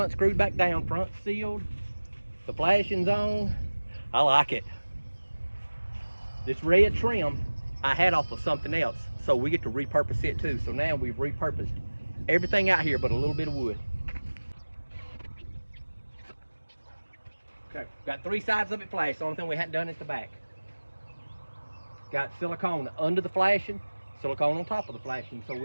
screwed back down, front sealed, the flashing's on. I like it. This red trim I had off of something else, so we get to repurpose it too. So now we've repurposed everything out here but a little bit of wood. Okay, got 3 sides of it flashed. The only thing we hadn't done is the back. Got silicone under the flashing, silicone on top of the flashing, so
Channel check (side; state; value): both; inverted; correlation -1.00